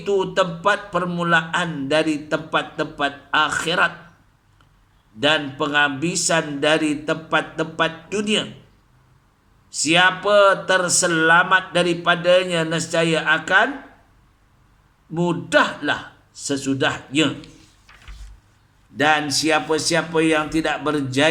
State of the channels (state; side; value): identical; both; correlation 1.00